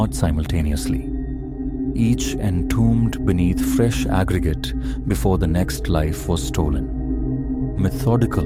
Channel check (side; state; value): both; identical; correlation 1.00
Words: simultaneously. Each entombed beneath fresh aggregate before the next life was stolen. Methodical,